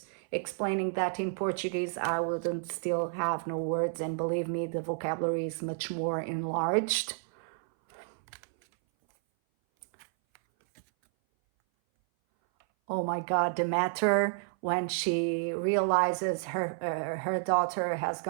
explaining that in Portuguese, I wouldn't still have no words. And believe me, the vocabulary is much more enlarged. Oh my God, the matter when she realizes her daughter has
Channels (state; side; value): silent; left; 57 dB below the other